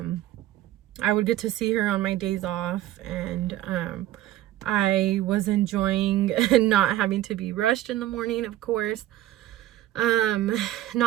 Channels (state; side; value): quieter; left; 14.1 dB